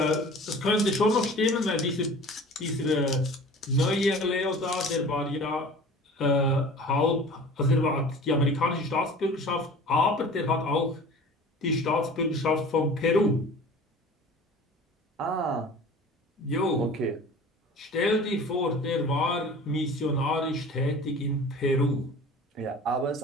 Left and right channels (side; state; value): both; normal; correlation 0.42